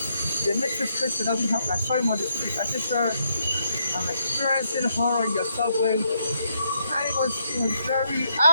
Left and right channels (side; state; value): both; inverted; correlation -0.76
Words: The Matrix Christian doesn't have. I saw him on the street. I said, sir, I'm experiencing horror in your subway. And he was very